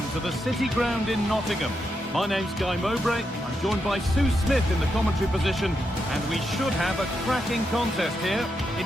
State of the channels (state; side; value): normal; both; correlation 0.84